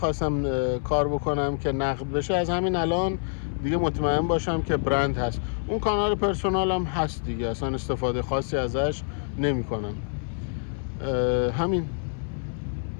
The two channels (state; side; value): silent; right; 61 dB below the other